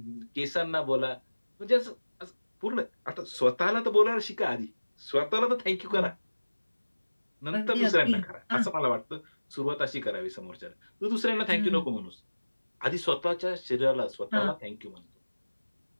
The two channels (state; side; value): inverted; both; correlation -1.00